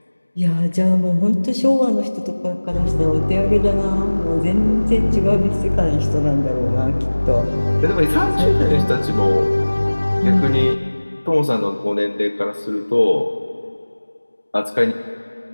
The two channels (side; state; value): both; inverted; correlation -1.00